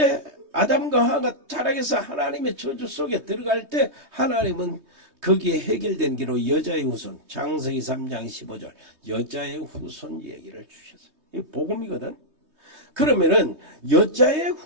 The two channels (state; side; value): late; left; 3.2 ms